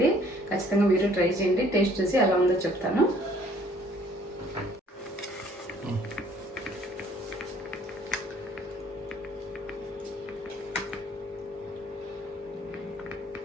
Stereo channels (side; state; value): both; normal; correlation 0.58